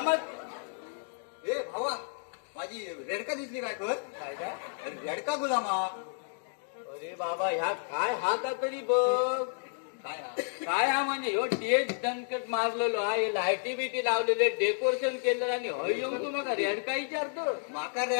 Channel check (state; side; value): silent; right; 57 dB below the other